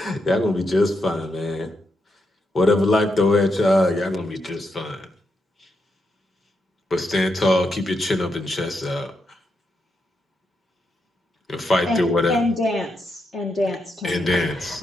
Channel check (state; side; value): normal; both; correlation 0.82